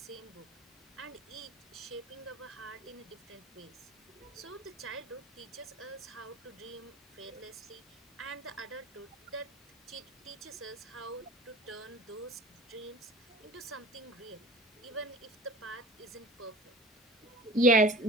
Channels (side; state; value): both; normal; correlation 0.39